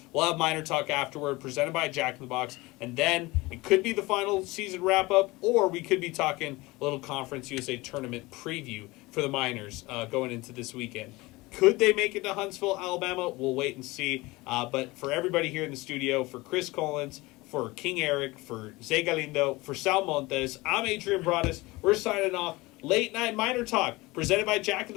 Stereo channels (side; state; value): right; quieter; 21.8 dB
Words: We'll have Miner Talk afterward, presented by Jack in the Box. And then it could be the final season wrap-up, or we could be talking a little Conference USA tournament preview for the Miners going into this weekend. Could they make it to Huntsville, Alabama? We'll wait and see. But for everybody here in the studio, for Chris Collins, for King Eric, for Zay Galindo, for Sal Montez, I'm Adrian Broaddus. We're signing off. Late Night Miner Talk, presented by Jack in